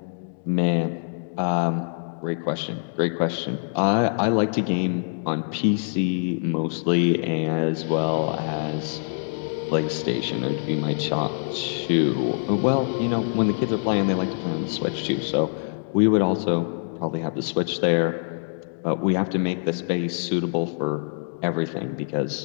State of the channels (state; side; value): silent; right; digital silence